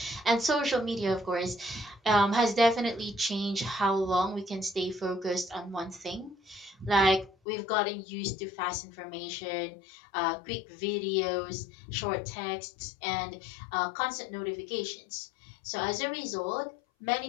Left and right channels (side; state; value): right; drops out; at 7.3 s